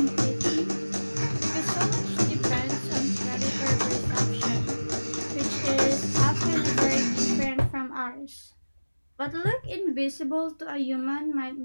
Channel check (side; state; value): both; inverted; correlation -1.00